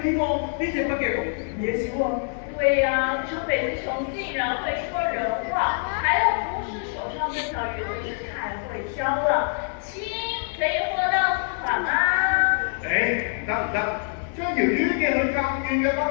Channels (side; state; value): right; silent; 62 dB below the other